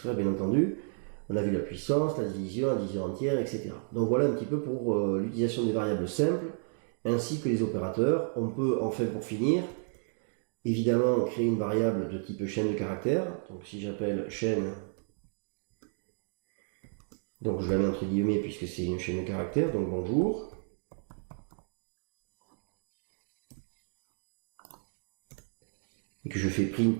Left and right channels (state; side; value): silent; left; 56 dB below the other